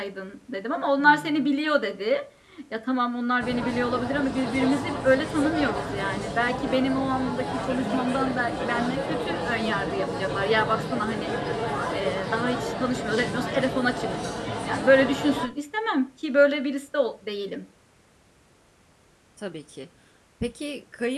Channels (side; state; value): both; identical; correlation 1.00